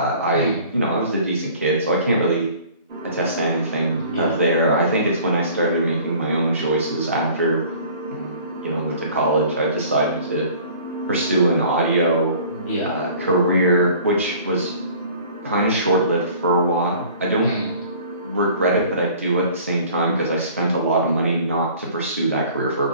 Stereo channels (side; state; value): both; inverted; correlation -0.49